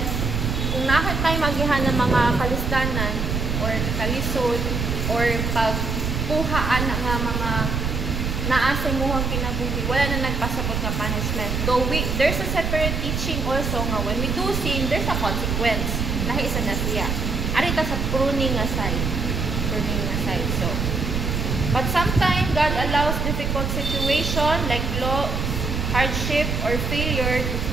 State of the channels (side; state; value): right; noise; rumble, 1 dB below the sound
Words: kung nakit tayo magihan ng mga kalistanan or kalisod or pagkuhaan nga mga naasay mo ang kinabuhi, wala na nagpasabot nga punishment. Though there's a separate teaching also nga when we do sin, there's a consequence. Lahi isa na siya. Arita sa pruning aside. So, but sometimes God allows difficult situation like loss, hardship, or failure to